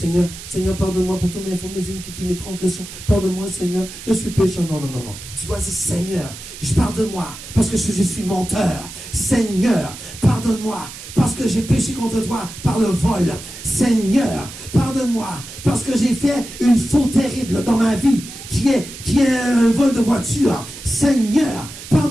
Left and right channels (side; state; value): right; noise; hiss, 13 dB below the sound